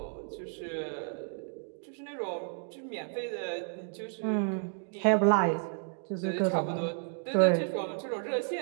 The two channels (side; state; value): left; silent; 56 dB below the other